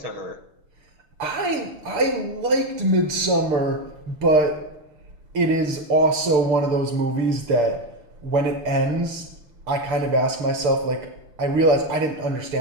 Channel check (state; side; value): late; left; 6.6 ms